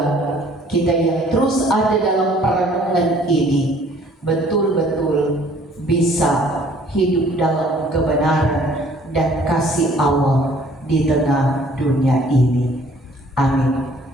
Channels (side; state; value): both; normal; correlation 0.57